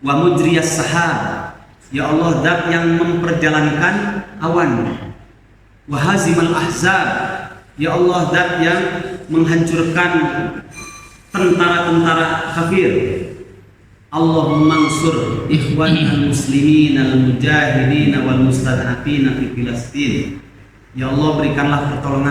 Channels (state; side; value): identical; both; correlation 1.00